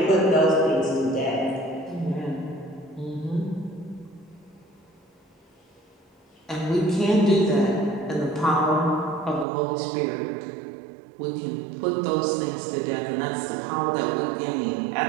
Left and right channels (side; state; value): left; drops out; at 9.5 s